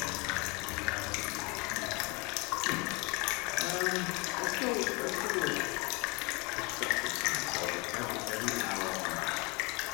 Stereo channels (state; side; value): quieter; right; 28.0 dB